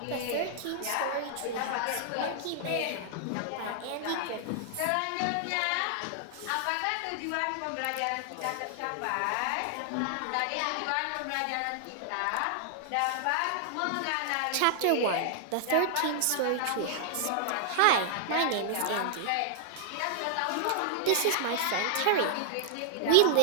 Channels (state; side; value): different; both; correlation 0.00